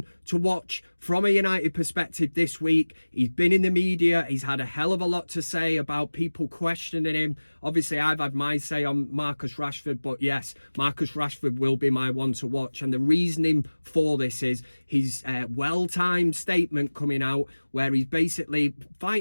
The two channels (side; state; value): both; inverted; correlation -1.00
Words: to watch from a United perspective this week, he's been in the media, he's had a hell of a lot to say about people questioning him. Obviously, I've had my say on Marcus Rashford, but yes, Marcus Rashford will be my one to watch. And the reasoning for this is his well-timed statement coming out where he's basically